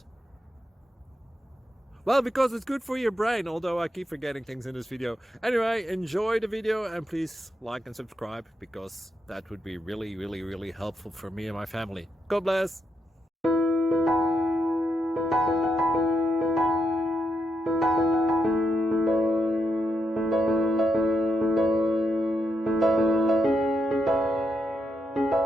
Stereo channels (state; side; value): normal; both; correlation 0.82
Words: Well, because it's good for your brain, although I keep forgetting things in this video. Anyway, enjoy the video and please like and subscribe, because that would be really helpful for me and my family. God bless!